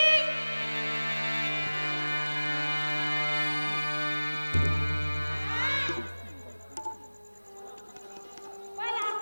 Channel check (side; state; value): both; inverted; correlation -1.00